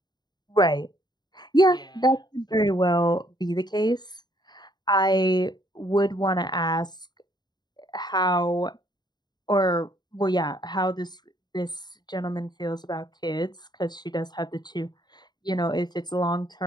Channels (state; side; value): late; right; 0.20 ms